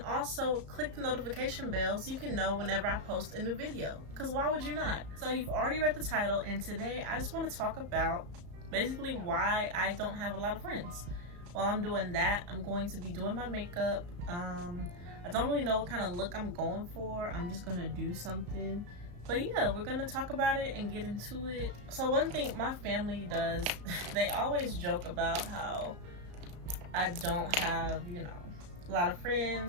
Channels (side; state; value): left; late; 34 ms